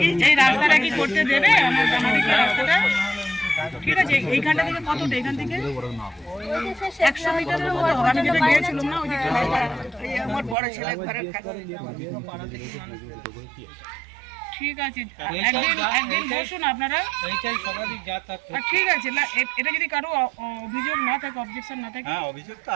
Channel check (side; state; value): left; drops out; at 10.6 s